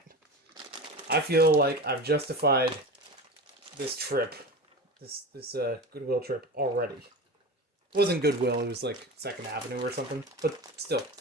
I feel like I've justified this trip. This Goodwill trip already. It wasn't Goodwill, it was like 2nd Avenue or something. But still,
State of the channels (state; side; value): normal; both; correlation 0.29